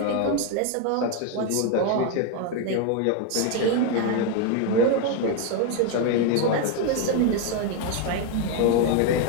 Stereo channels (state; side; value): different; both; correlation 0.01